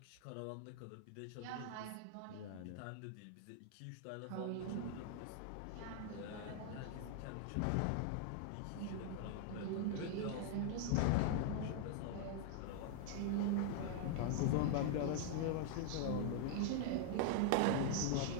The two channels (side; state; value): both; different; correlation 0.00